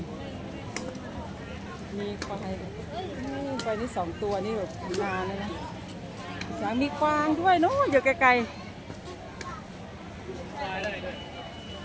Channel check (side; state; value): both; identical; correlation 1.00